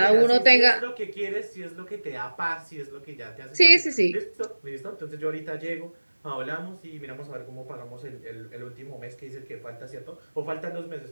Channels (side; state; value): both; inverted; correlation -1.00